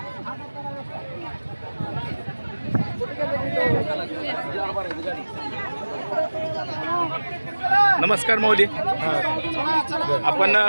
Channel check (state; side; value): inverted; both; correlation -1.00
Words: नमस्कार माऊली. आपण